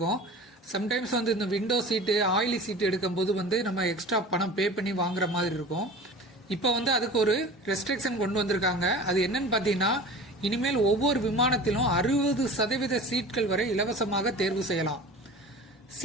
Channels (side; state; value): both; normal; correlation 0.38